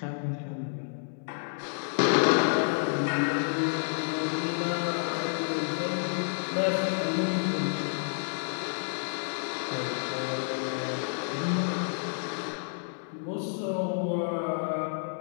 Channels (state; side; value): silent; right; 58 dB below the other